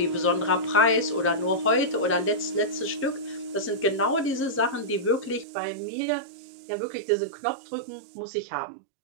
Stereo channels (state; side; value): drops out; left; at 5.5 s